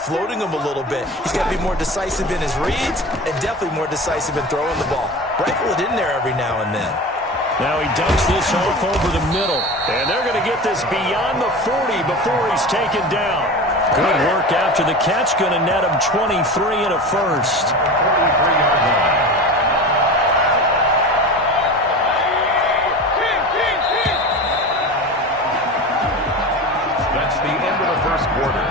them a little bit. He's got to be more decisive in his reads and definitely more decisive in throwing the ball. Rifle it in there every now and then. Now he dumps this off over the middle, and they're going to get this beyond the 40 before he's taken down. Good work after the catch, going to net him 23 and a first. 43-yard line. That's the end of the first quarter.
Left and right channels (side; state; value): both; normal; correlation 0.31